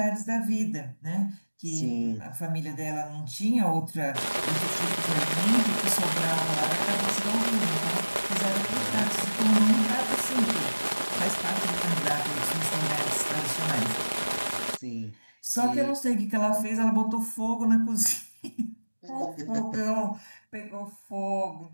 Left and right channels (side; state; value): both; inverted; correlation -1.00